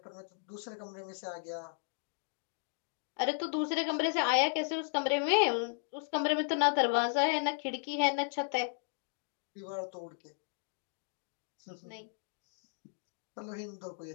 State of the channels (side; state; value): right; silent; digital silence